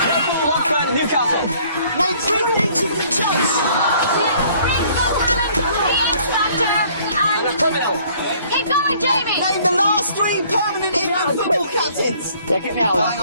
Liverpool, Watford, Newcastle. Name 3 things you can choose. Keep going, Jamie! Name the last 3 permanent England football captains. Yeah, get me out. Oh, hang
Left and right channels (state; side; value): inverted; both; correlation -0.58